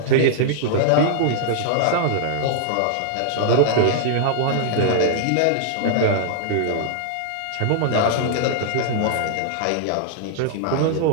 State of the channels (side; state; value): both; different; correlation -0.01